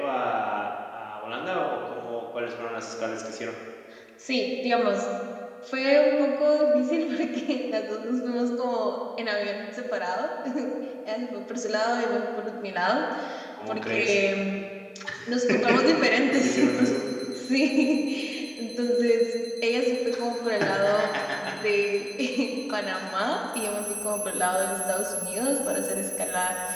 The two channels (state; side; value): identical; both; correlation 1.00